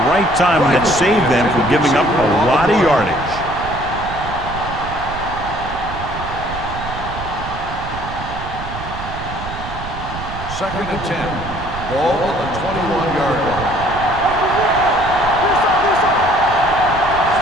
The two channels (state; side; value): noise; right; rumble, 10 dB below the sound